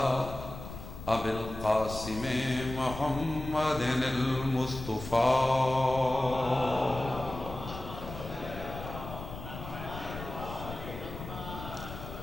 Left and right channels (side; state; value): left; noise; rumble, 10 dB below the sound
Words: ابی القاسم محمد المصطفی